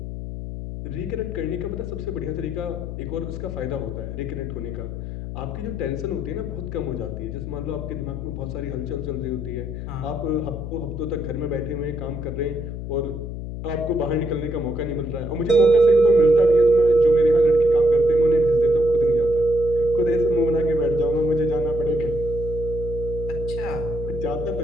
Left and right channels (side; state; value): left; noise; hum, 7 dB below the sound